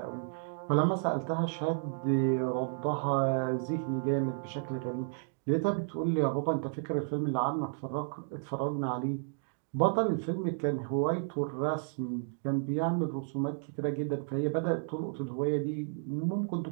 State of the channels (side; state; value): left; silent; digital silence